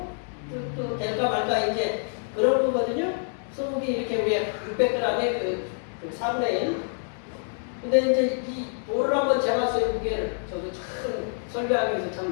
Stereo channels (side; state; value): right; silent; 60 dB below the other